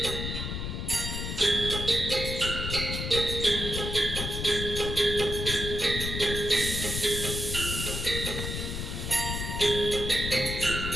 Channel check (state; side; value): noise; left; rumble, 4 dB below the sound